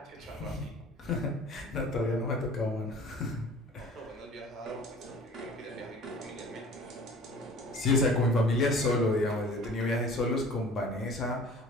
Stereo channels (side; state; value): both; normal; correlation 0.45